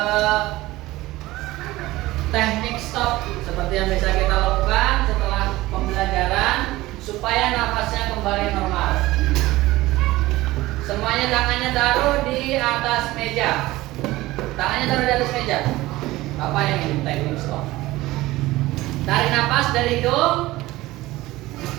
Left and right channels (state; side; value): quieter; left; 18.2 dB